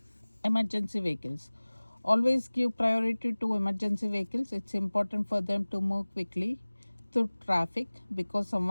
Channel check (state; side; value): inverted; both; correlation -1.00